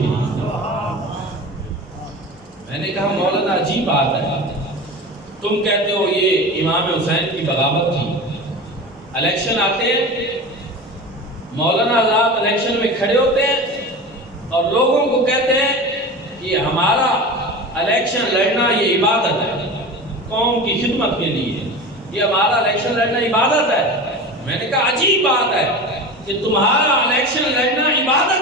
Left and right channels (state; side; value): normal; both; correlation 0.31